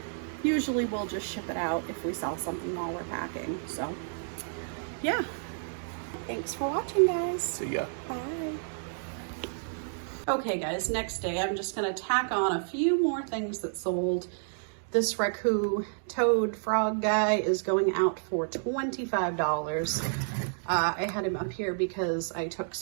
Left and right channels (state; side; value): silent; left; digital silence